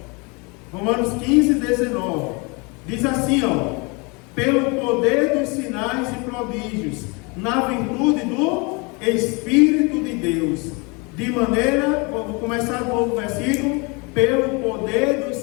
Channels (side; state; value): right; quieter; 29.7 dB